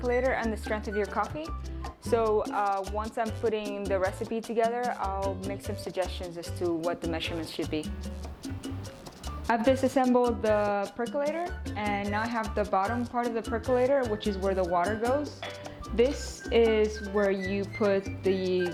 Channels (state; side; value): identical; both; correlation 1.00